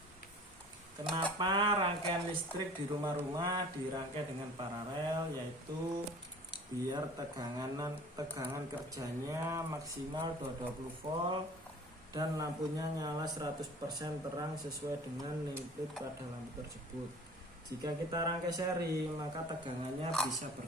Kenapa rangkaian listrik di rumah-rumah dirangkai dengan paralel, yaitu biar tegangan kerjanya maksimal 220 volt dan lampunya nyala 100% terang sesuai dengan input pada lampu tersebut. Jika kita rangkai seri, maka tegangannya bisa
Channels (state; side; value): normal; both; correlation 0.45